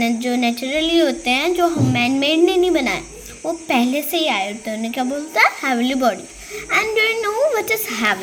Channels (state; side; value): identical; both; correlation 1.00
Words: नेचुरली होते हैं, जो हम मैन मेड ने नहीं बनाए, वो पहले से ही आए होते हैं, उन्हें क्या बोलते हैं? Heavenly body. And do you know what is